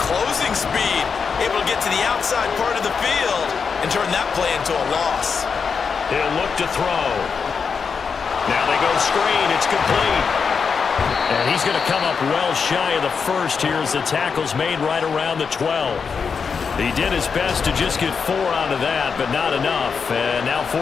closing speed? Able to get to the outside part of the field and turn that play into a loss. He'll look to throw. Now they go screen. It's complete. And he's going to come up well shy of the first here as the tackle's made right around the 12. He did his best to just get 4 out of that, but not enough. And now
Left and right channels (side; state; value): right; quieter; 5.8 dB